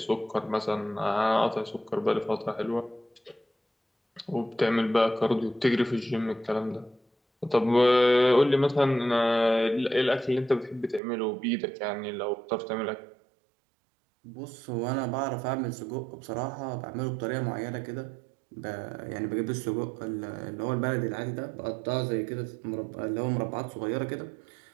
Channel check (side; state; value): left; drops out; at 11.0 s